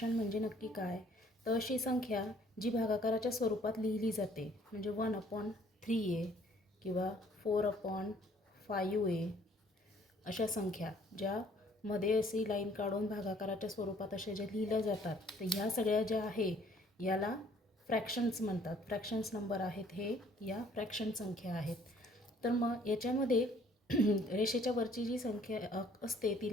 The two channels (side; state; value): both; normal; correlation 0.59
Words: म्हणजे नक्की काय. तर अशी संख्या जी भागाकाराच्या स्वरूपात लिहिली जाते, म्हणजे 1/3a किंवा 4/5a अशा संख्या ज्यामध्ये अशी लाईन काढून भागाकाराच्या स्वरूपात अशा ज्या लिहिल्या जातात, तर ह्या सगळ्या ज्या आहे याला फ्रॅक्शन्स म्हणतात. फ्रॅक्शन्स नंबर आहेत हे, या फ्रॅक्शन संख्या आहेत. तर मग याच्यामध्ये रेषेच्या वरची जी संख्या असते